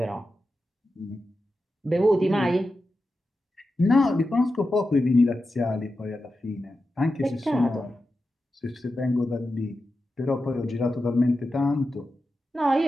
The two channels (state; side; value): normal; both; correlation 0.91